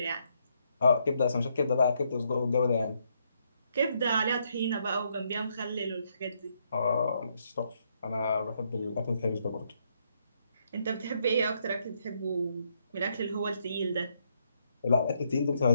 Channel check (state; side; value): inverted; both; correlation -0.75